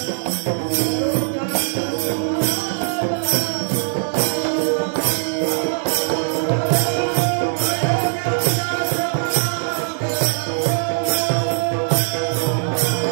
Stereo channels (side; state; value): left; silent; digital silence